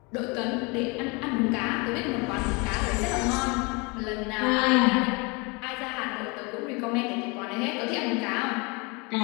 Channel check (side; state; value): right; quieter; 29.2 dB